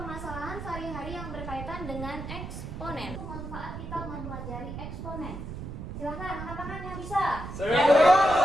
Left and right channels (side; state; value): right; noise; rumble, 8 dB below the sound